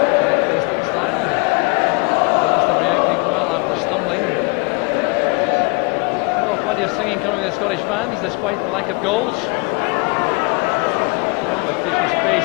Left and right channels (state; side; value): quieter; right; 31.4 dB